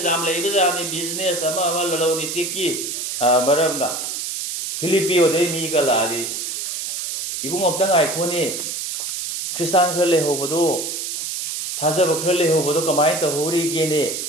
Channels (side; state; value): right; noise; hiss, 4 dB below the sound